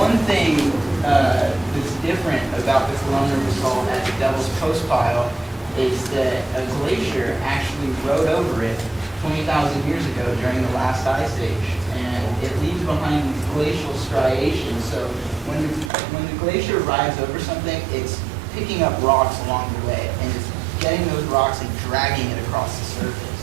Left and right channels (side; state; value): left; drops out; at 15.9 s